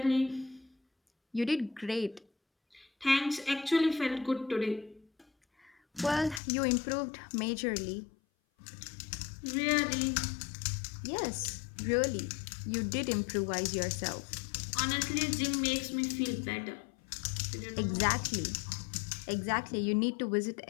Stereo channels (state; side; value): drops out; right; at 6.4 s